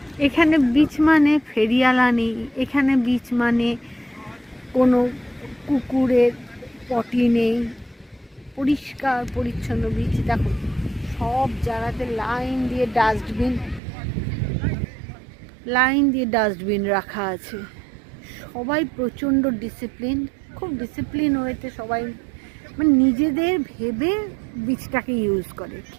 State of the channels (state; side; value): drops out; left; at 13.8 s